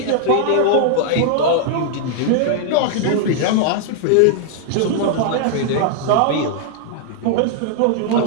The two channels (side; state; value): both; different; correlation -0.01